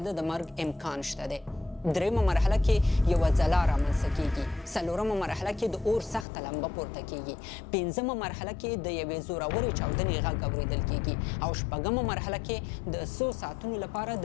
د مرګ امکان شته دی. دریمه مرحله کې یوه ځلا رامنځته کیږي. څلورمه مرحله کې د اور سخته لمبه پورته کیږي. پنځمه مرحله کې د یوې زورورې چاودنې غږ اورېدل کیږي او شپږمه مرحله کې د 100 ساعتونو لپاره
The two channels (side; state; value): right; drops out; at 6.2 s